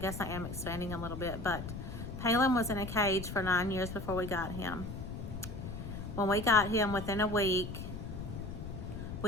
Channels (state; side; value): noise; left; rumble, 7 dB below the sound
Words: I am expanding a little bit, but Paylin was in a cage for 9 years before we got him. When we got him, within a week,